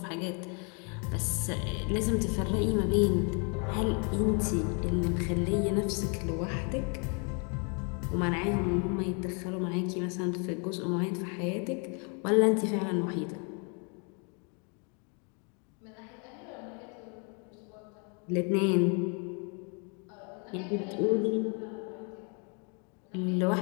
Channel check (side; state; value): right; quieter; 36.5 dB